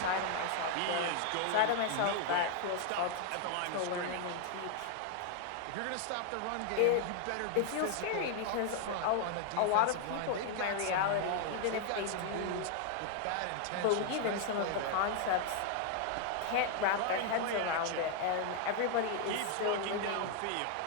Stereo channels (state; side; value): different; both; correlation 0.00